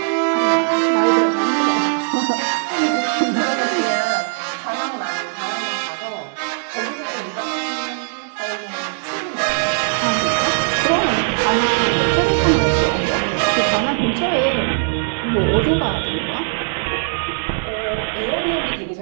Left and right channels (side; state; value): left; silent; 66 dB below the other